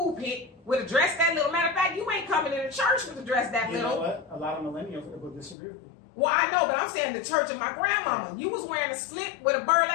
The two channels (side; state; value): right; drops out; at 5.6 s